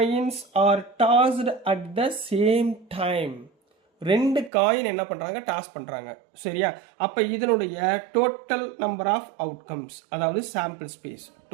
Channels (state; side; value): drops out; left; at 4.5 s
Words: are tossed at the same time. 2 coin என்ன பண்றாங்க? டாஸ் பண்றாங்க, சரியா? அப்ப இதனுடைய டோட்டல் நம்பர் ஆஃப் அவுட்கம்ஸ், அதாவது sample space,